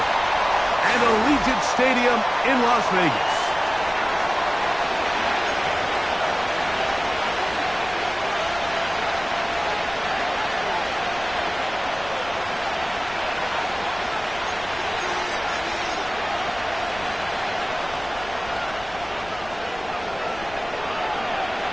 and Allegiant Stadium in Las Vegas.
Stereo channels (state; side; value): noise; left; rumble, 19 dB below the sound